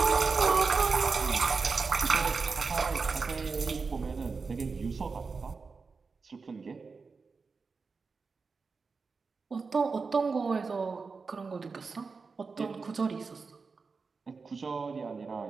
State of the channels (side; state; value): left; quieter; 4.6 dB